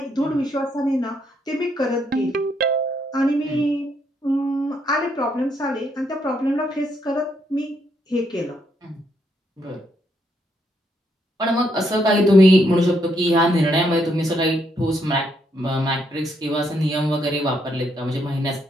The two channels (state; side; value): normal; both; correlation 0.75